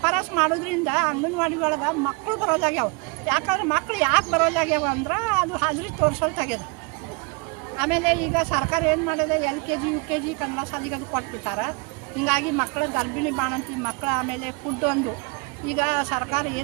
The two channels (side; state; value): left; quieter; 30.4 dB